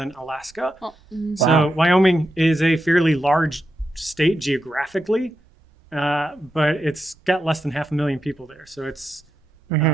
Alaska. Well, so Wyoming is a fairly large state geographically, but it's got less than 500,000 people there. So it's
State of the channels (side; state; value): both; normal; correlation 0.86